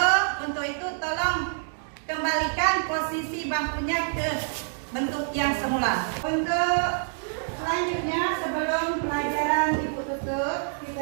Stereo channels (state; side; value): silent; left; digital silence